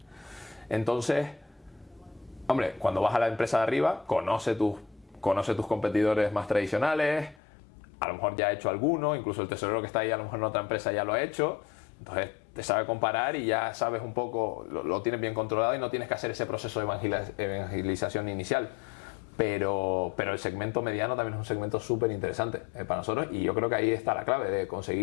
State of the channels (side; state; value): right; drops out; at 7.4 s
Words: Entonces, hombre, cuando vas a la empresa de arriba, conoce tus competidores más tradicionales, a lo mejor ya ha hecho alguno, incluso el tesorero que está ahí a lo mejor en otra empresa ya lo ha hecho, entonces te sabe comparar y ya sabes un poco, lo tienes bien controlado y no tienes que hacer ese proceso de evangelización inicial. Pero el segmento mediano también es un segmento súper interesante para nosotros y yo creo que ahí está la clave de